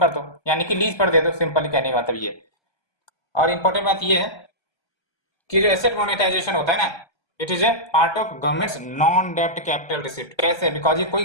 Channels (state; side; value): late; right; 1.3 ms